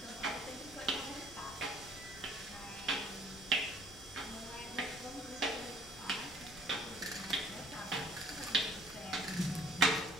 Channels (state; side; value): noise; left; rumble, 18 dB below the sound